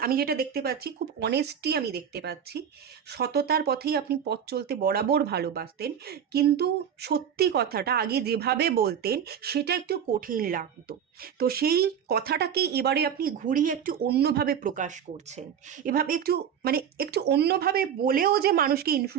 আমি যেটা দেখতে পাচ্ছি, খুব অনেস্টি আমি দেখতে পাচ্ছি। সততার পথেই আপনি পথ চলতে বরাবর ভালোবাসতেন, কিন্তু সত্যি কথাটা আগে যেভাবে বলতেন সেটা একটু কঠিন লাগতো। তো সেই কথাটাকে এবারে আপনি ঘুরিয়ে একটু অন্যভাবে প্রকাশ করছেন। এভাবে একটু মানে একটু অন্যভাবে বলেও যে মানুষকে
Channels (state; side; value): quieter; left; 8.5 dB